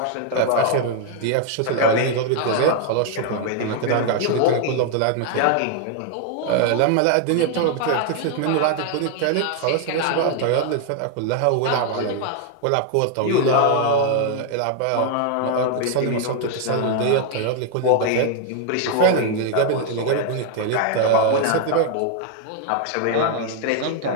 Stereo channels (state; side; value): different; both; correlation 0.00